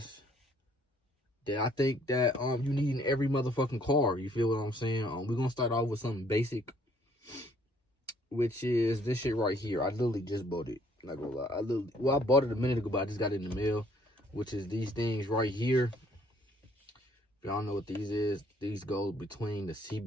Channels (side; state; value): both; normal; correlation 0.63